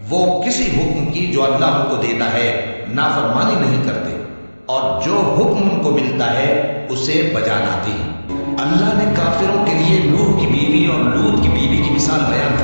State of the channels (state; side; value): inverted; both; correlation -1.00